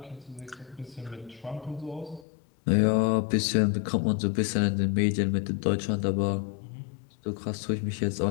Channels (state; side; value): drops out; right; at 2.2 s